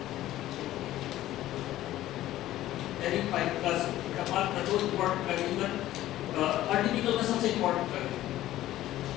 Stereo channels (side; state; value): right; quieter; 14.4 dB